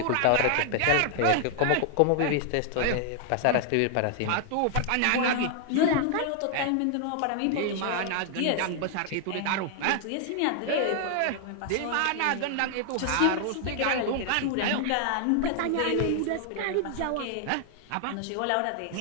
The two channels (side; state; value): both; different; correlation 0.00